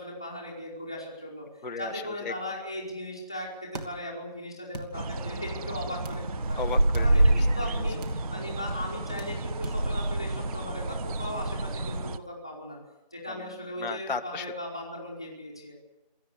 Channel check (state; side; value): inverted; both; correlation -0.80